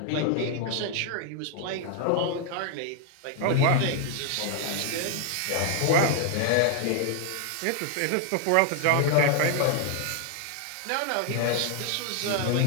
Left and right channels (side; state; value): both; different; correlation 0.00